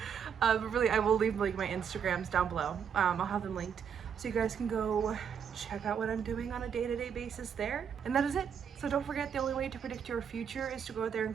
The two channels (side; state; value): left; quieter; 7.5 dB